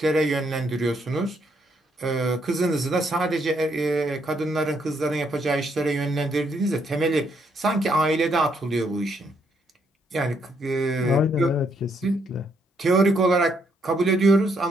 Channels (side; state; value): both; normal; correlation 0.73